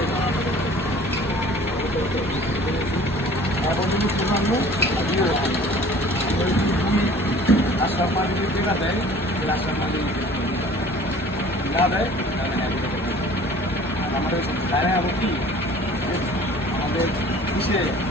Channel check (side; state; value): both; normal; correlation 0.48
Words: এখন যদি রাস্তার মাঝে যদি দেখা দেয় রাস্তার মাঝে না দেয় তাহলে আমাদের গায়ে আবার কি আমাদের কিসে